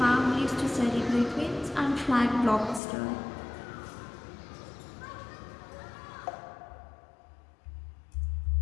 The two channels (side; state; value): right; drops out; at 2.8 s